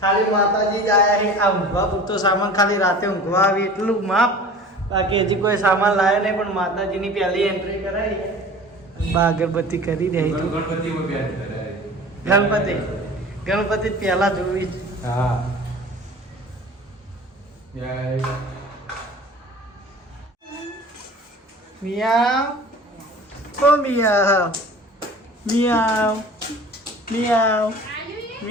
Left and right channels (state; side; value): normal; both; correlation 0.42